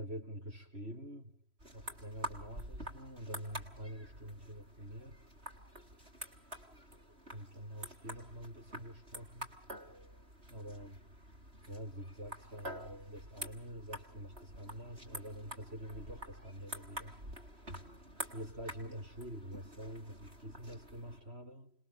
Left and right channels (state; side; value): late; left; 3.1 ms